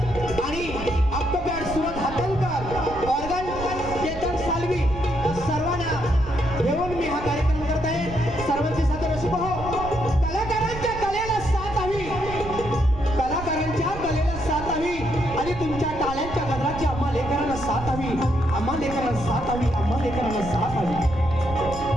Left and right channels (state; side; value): noise; right; rumble, 10 dB below the sound